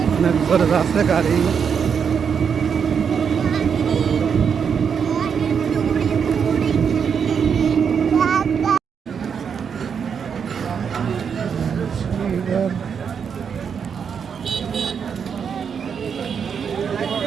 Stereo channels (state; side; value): quieter; left; 6.9 dB